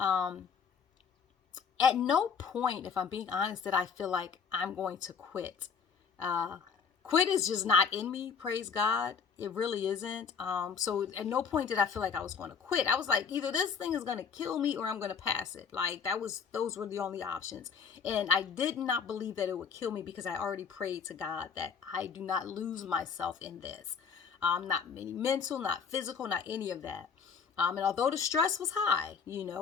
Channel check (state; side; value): quieter; right; 6.3 dB